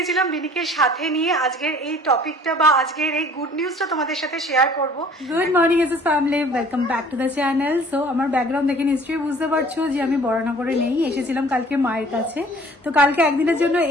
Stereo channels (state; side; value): normal; both; correlation 0.51